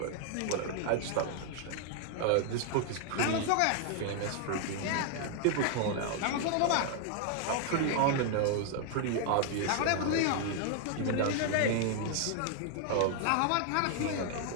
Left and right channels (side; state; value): both; different; correlation 0.00